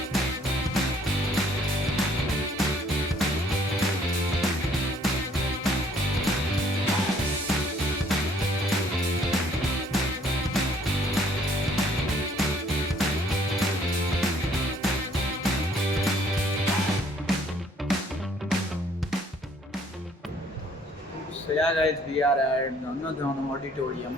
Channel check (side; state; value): both; normal; correlation 0.61